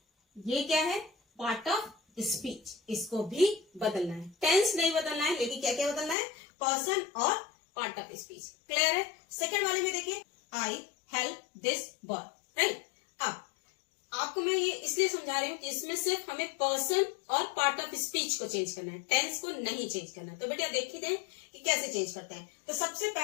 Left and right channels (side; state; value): right; drops out; at 6.2 s